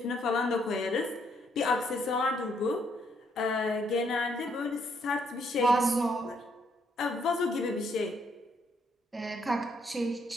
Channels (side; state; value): both; normal; correlation 0.72